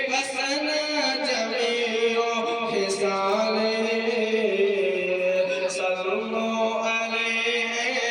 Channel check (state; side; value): identical; both; correlation 1.00